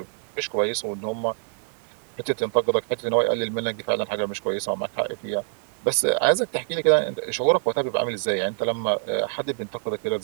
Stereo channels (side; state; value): left; silent; 56 dB below the other